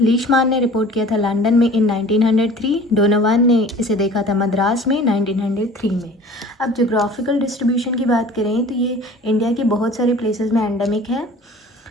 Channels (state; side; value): normal; both; correlation 0.45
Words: लीशमान ने रिपोर्ट किया था लंदन में इन 1903, डोनोवान ने इसे देखा था मद्रास में 1903 में। अब जोग्राफिकल डिस्ट्रीब्यूशन की बात करें तो ये इंडिया के बहुत सारे प्लेसेस में एंडेमिक है।